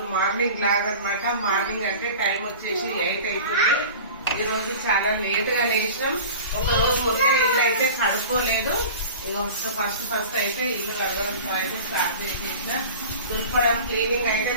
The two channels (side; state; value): both; inverted; correlation -0.37